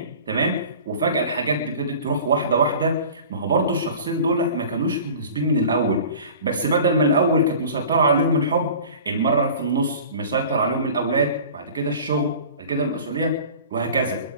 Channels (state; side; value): inverted; both; correlation -0.42